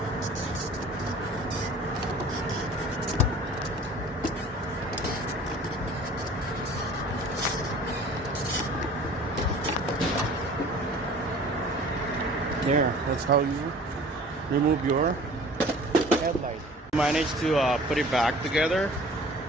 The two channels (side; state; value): both; normal; correlation 0.47